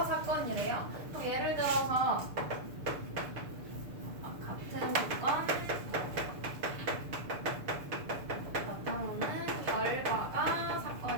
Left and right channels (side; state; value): left; late; 6.7 ms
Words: 사건이래요. 그럼 예를 들어서 같은 조건 나타나는 결과가